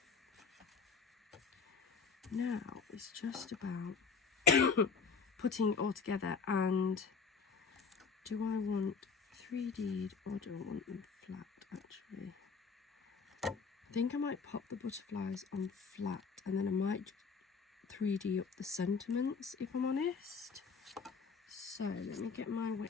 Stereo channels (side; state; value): right; quieter; 5.4 dB